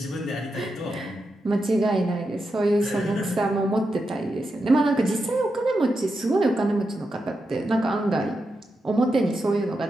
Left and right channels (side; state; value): both; normal; correlation 0.87